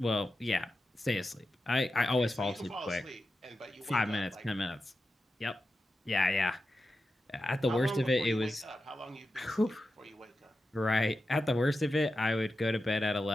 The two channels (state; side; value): normal; both; correlation 0.91